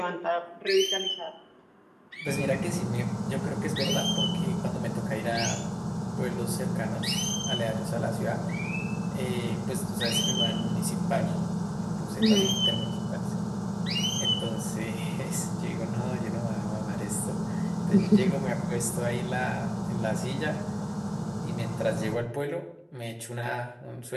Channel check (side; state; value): both; identical; correlation 1.00